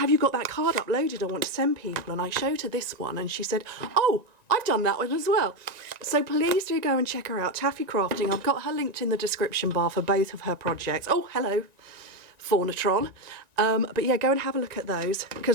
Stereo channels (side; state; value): left; late; 1.9 ms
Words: you got that card uploaded? I want to send people. And I showed her this one and she said, oh, I've done that one as well. So please do go and check her out, Taffy Crafting. I've got her linked in the description bar for both of her projects. Oh, hello, Faunatron. But yeah, go and have a look at those,